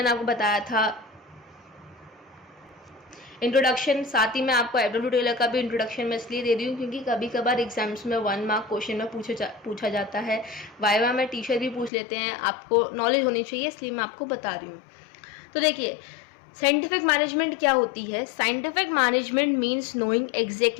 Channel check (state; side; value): drops out; right; at 11.9 s